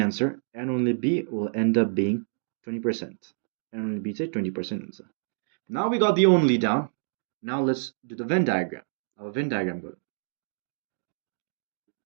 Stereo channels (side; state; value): left; silent; digital silence